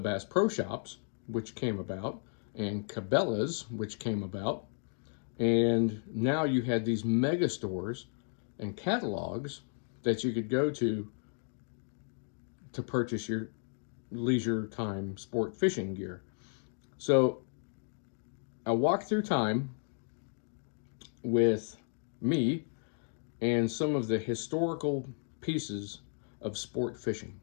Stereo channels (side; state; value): right; silent; 55 dB below the other